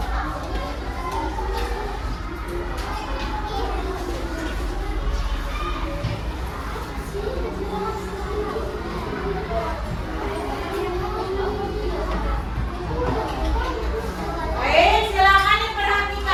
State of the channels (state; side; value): identical; both; correlation 1.00